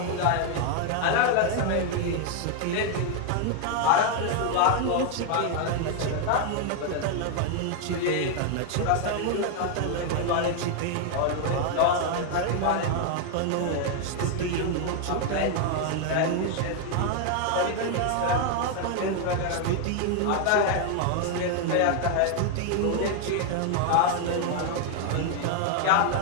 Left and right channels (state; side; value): different; both; correlation 0.00